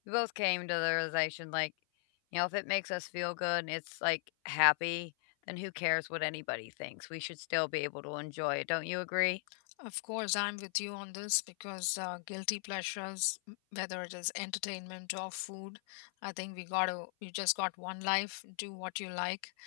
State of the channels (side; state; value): right; silent; 52 dB below the other